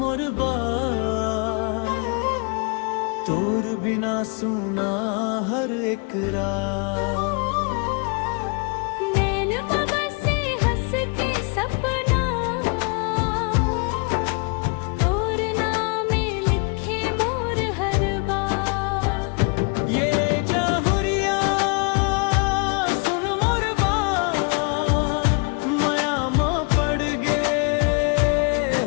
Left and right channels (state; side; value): quieter; right; 34.9 dB